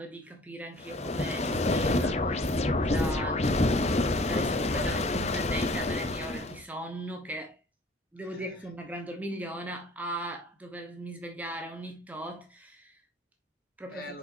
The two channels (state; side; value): normal; both; correlation 0.51